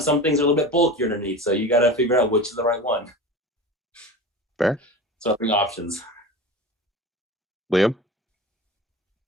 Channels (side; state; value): both; normal; correlation 0.31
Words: some things are a little bit bulkier underneath, so you got to figure out which is the right one. Fair. So I bring options. Liam?